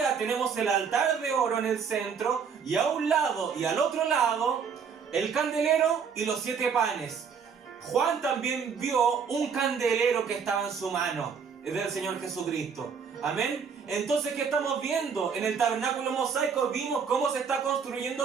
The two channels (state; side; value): quieter; left; 6.4 dB